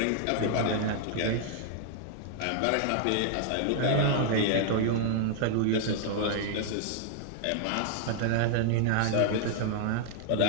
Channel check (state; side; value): different; both; correlation -0.01